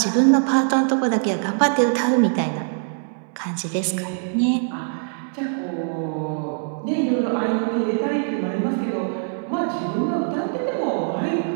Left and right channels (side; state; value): left; silent; 64 dB below the other